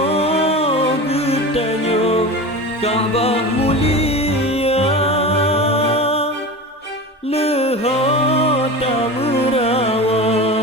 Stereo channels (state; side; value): normal; both; correlation 0.29